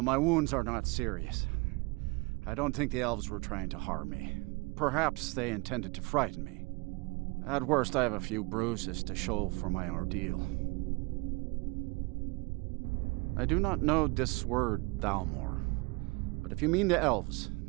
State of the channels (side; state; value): left; quieter; 26.8 dB